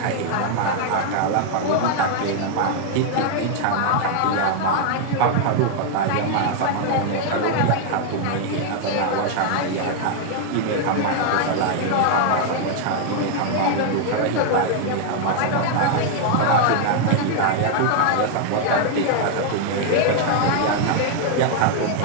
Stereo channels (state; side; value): different; both; correlation 0.00